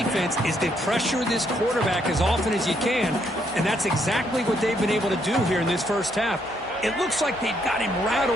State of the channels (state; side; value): normal; both; correlation 0.73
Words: is to pressure this quarterback as often as you can, and that's exactly what they've been able to do here in this first half. It looks like they've got him